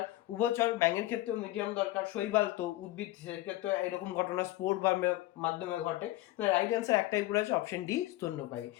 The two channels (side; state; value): right; quieter; 17.0 dB